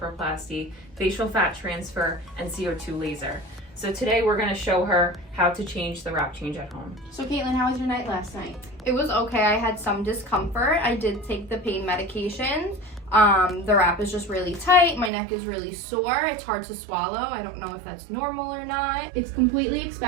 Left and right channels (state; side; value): drops out; left; at 15.1 s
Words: facial fat transfer, and CO2 laser. So today we're going to show her how to change the wrap change at home. So Caitlin, how was your night last night? It was okay. I had some discomfort. I did take the pain medications. The wrap is just really tight. My neck is really sore. It's hard to swallow. I don't know if that's normal or not. It's completely